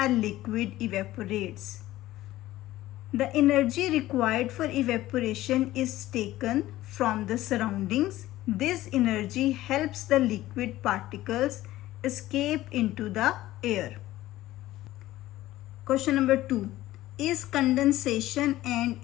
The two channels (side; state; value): right; quieter; 15.7 dB